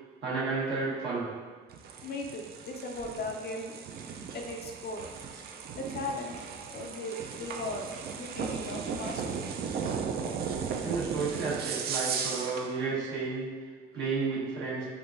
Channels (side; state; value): left; quieter; 3.6 dB